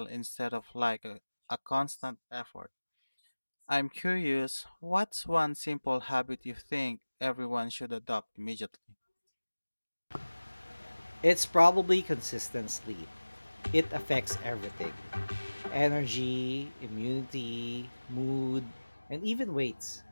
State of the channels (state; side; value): inverted; both; correlation -1.00